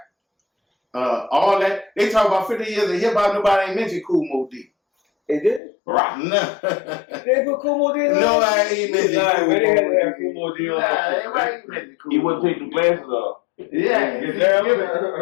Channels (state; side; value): drops out; right; at 5.6 s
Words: All that. They talk about 50 years of hip hop, nobody ain't mentioned Cool Mo D. They did? Rock. No. They put Cool Mo D in? No, I ain't mentioned Cool Mo D. Everybody ain't mentioned Cool Mo D. He wouldn't take the glasses off. Yeah,